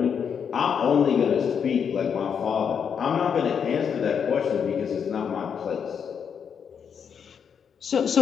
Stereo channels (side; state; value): right; quieter; 7.2 dB